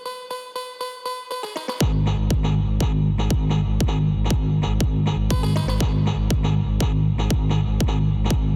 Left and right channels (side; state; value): both; identical; correlation 1.00